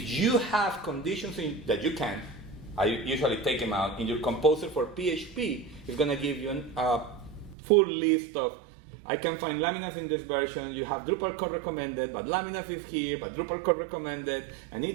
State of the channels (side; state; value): left; drops out; at 7.6 s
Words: you have conditions that you can, I usually take them out, in your composer for PHP, it's going to give you a full list of, I can find Laminas in this version, you have Drupal core recommended, but Laminas is here, but Drupal core recommended, and it